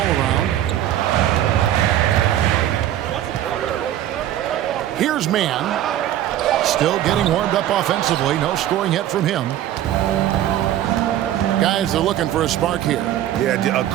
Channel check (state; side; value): quieter; left; 12.2 dB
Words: Here's Mann. Still getting warmed up offensively. No scoring yet from him. Guys are looking for a spark here. Yeah, a